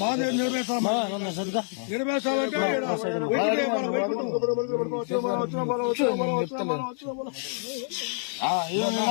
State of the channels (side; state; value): right; silent; 58 dB below the other